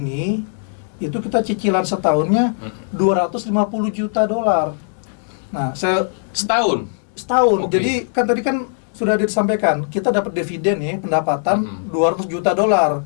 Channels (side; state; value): right; silent; digital silence